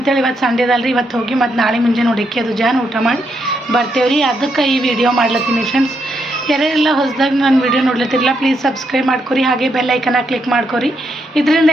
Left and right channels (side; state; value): both; normal; correlation 0.79